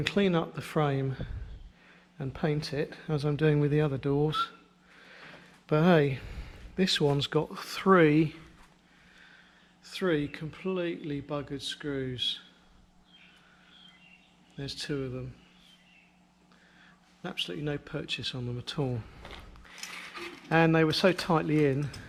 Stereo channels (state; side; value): identical; both; correlation 1.00